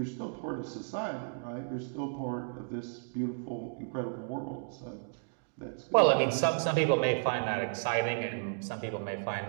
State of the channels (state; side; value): silent; left; digital silence